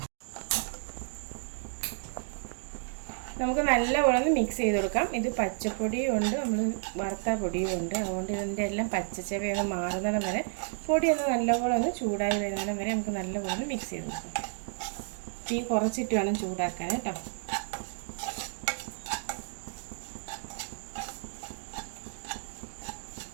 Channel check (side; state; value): left; silent; digital silence